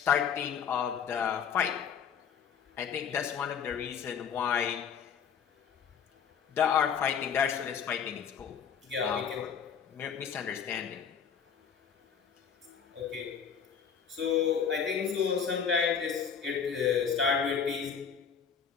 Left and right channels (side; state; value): right; quieter; 7.2 dB